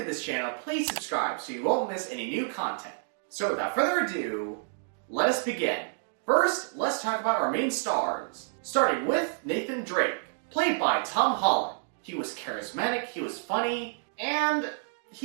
this channel, please subscribe so you won't miss any new content. So without further ado, let us begin. First, let's talk about our main stars, starting with Nathan Drake, played by Tom Holland. He was charismatic, he was funny, and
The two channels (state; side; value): silent; left; digital silence